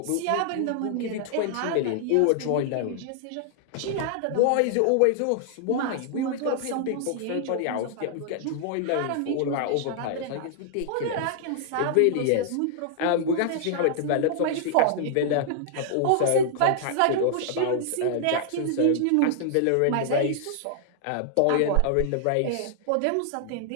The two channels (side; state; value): both; different; correlation -0.01